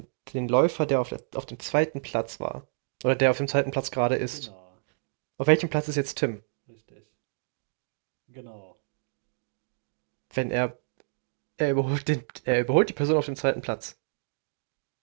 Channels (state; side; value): silent; left; digital silence